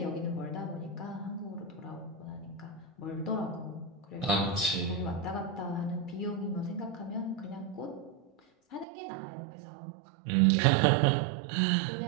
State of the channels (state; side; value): drops out; left; at 8.8 s